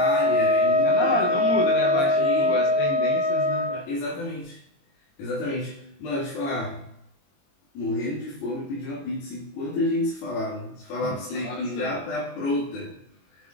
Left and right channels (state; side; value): late; right; 22 ms